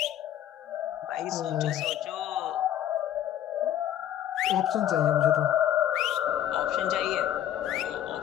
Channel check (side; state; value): right; quieter; 11.3 dB